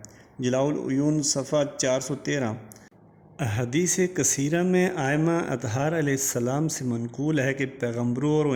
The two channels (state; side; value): identical; both; correlation 1.00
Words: جلاء العیون صفحہ 413 حدیث کثیرہ میں ائمہ اطہار علیہ السلام سے منقول ہے کہ پیغمبروں